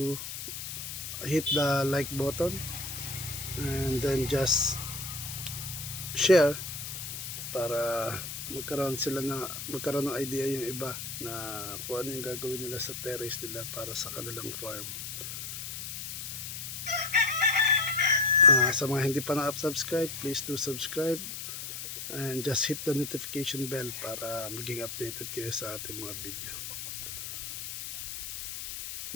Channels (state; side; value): noise; left; hiss, 7 dB below the sound